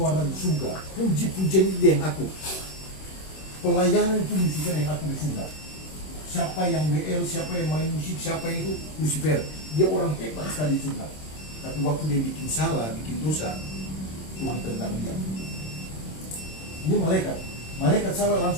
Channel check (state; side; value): late; right; 26 ms